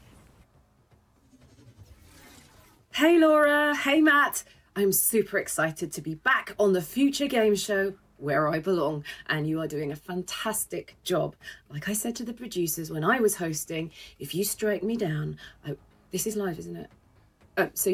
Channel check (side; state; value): both; identical; correlation 1.00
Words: Hey Laura, hey Matt. I'm super excited to be back on the Future Game Show where I belong, and you are doing a fantastic job. Like I said to the producers when I was hosting, if you strike me down, this is live, isn't it? So